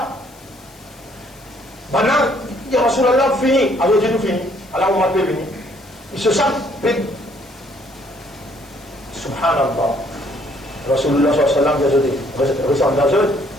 maintenant, il y a Rasulallah fini, alors Dieu nous fini, alors on m'a pas venu. Ils se sentent pédés. Subhanallah. Rasulullah sallallahu alayhi wa sallam,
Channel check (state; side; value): noise; left; hiss, 25 dB below the sound